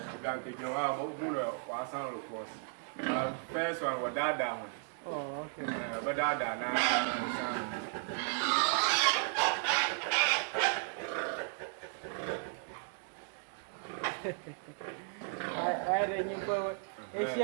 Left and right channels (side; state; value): left; silent; 54 dB below the other